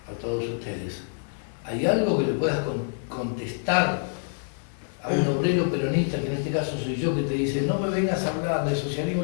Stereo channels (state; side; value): silent; right; 55 dB below the other